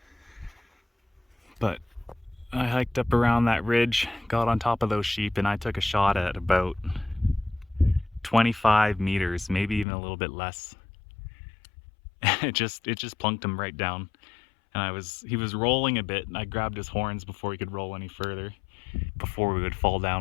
But I hiked up around that ridge, got on top of those sheep, and I took a shot at about 25 meters, maybe even a little bit less. It just plunked him right down. And he was rolling a bit, and I grabbed his horns before he could roll any further, before we would fall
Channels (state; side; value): drops out; right; at 9.9 s